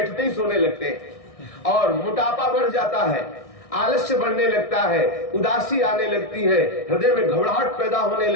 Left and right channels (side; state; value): right; late; 1.6 ms